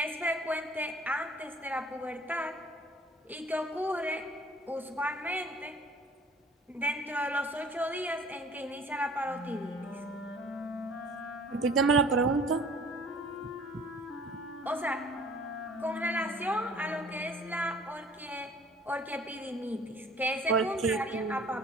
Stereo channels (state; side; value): normal; both; correlation 0.50